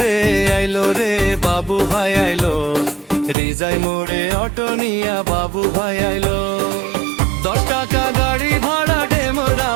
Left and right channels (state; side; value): drops out; left; at 3.4 s